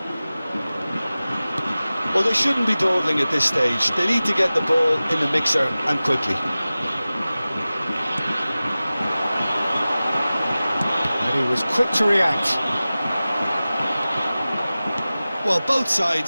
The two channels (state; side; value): inverted; both; correlation -0.97